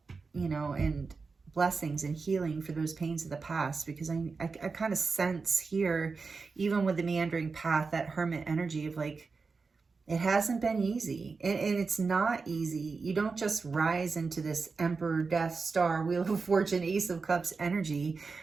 and blessings and healing for those pains of the past, because I kind of sense here, even with the meandering path, that hermit energy of like, it hasn't been easy, and it's not easy. You don't just rise into this Emperor, Death, Star, Wheel of Fortune, Ace of Cups energy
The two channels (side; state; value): left; quieter; 4.5 dB